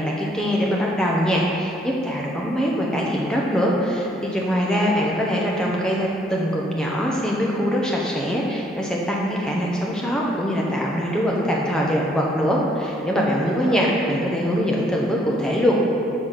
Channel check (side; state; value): both; normal; correlation 0.67